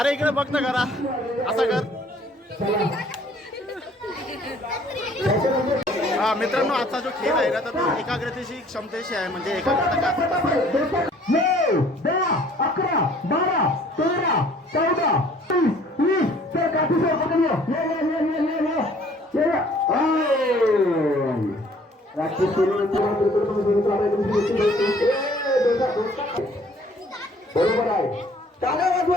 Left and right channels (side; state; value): both; normal; correlation 0.56